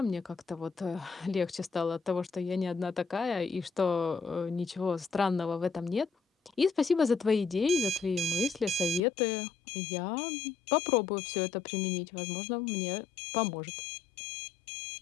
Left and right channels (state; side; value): drops out; right; at 9.0 s